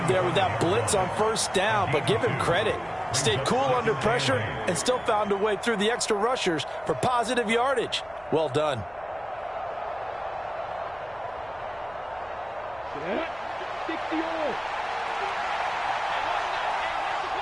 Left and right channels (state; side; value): noise; left; hum, 26 dB below the sound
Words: there with that blitz on 1st down, but give him credit. Stayed cool under pressure and still found a way through the extra rushers for positive yardage. Well done.